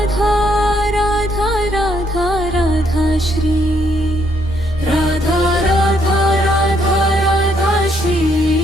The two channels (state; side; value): normal; both; correlation 0.71